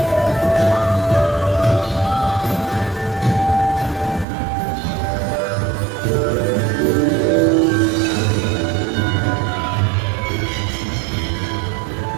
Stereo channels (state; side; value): drops out; left; at 4.2 s